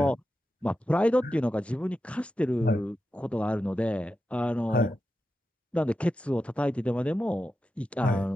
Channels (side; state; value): both; normal; correlation 0.90